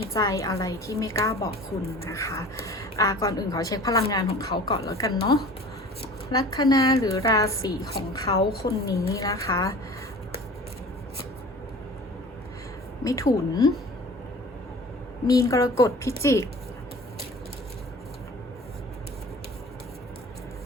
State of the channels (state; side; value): normal; both; correlation 0.42